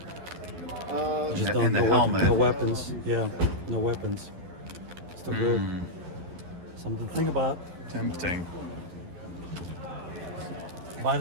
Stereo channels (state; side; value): late; left; 11 ms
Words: Just And the helmet. No weapons. Yeah, no weapons. Still good. Something to think about. Tempting. Buy